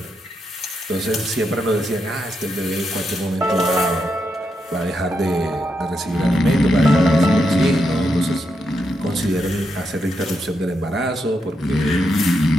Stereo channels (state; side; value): normal; both; correlation 0.83